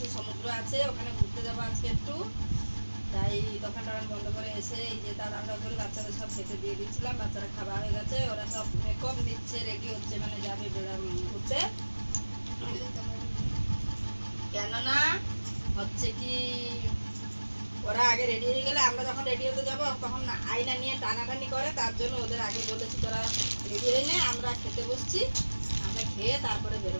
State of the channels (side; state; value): both; inverted; correlation -1.00